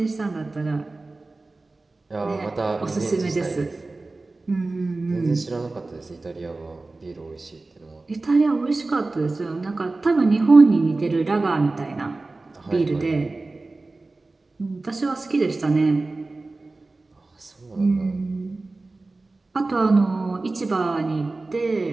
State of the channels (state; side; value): quieter; left; 3.3 dB